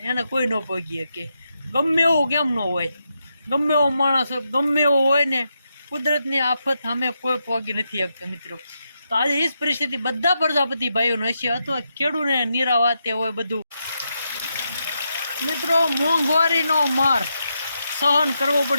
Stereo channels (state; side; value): inverted; both; correlation -0.84